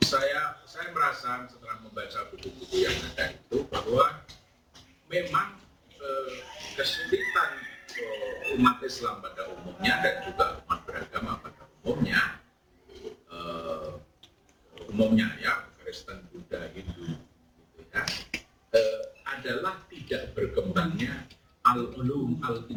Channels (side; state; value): both; identical; correlation 1.00